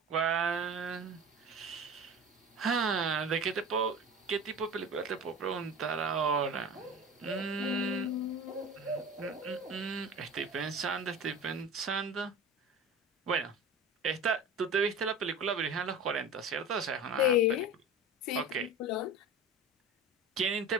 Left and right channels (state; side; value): normal; both; correlation 0.34